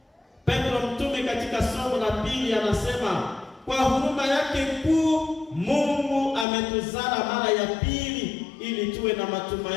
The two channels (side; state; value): right; drops out; at 6.5 s